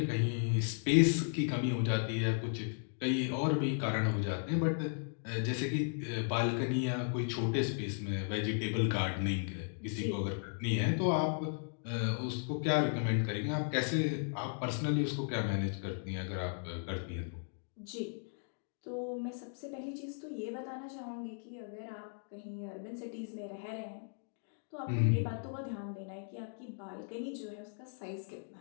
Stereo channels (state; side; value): silent; right; digital silence